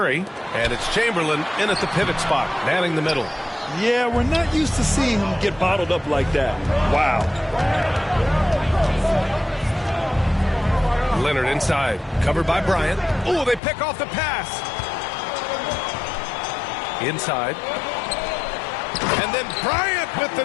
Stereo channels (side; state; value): right; drops out; at 13.6 s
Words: And it's Chamberlain in at the pivot spot, manning the middle. Yeah, we're not used to seeing him get bottled up like that. Wow. Leonard inside, covered by Bryant. Oh, they pick off the pass. Inside. And then Bryant with the